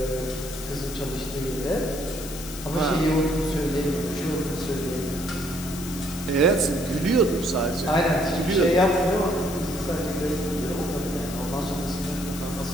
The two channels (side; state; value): left; noise; hiss, 12 dB below the sound